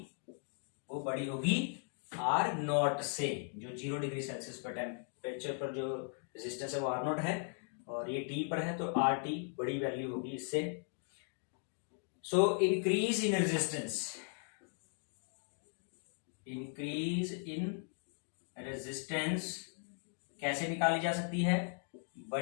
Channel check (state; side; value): silent; right; 53 dB below the other